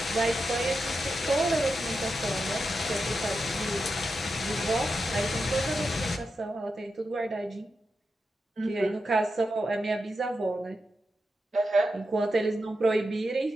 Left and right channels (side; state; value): both; normal; correlation 0.88